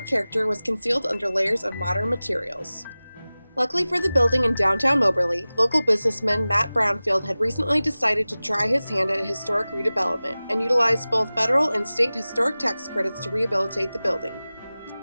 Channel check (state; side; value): inverted; both; correlation -0.98